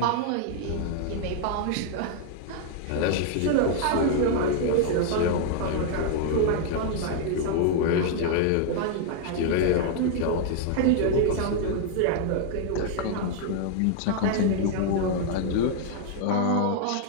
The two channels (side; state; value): both; different; correlation 0.00